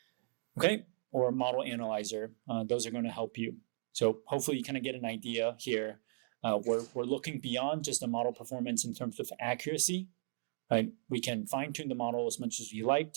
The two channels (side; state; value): left; silent; digital silence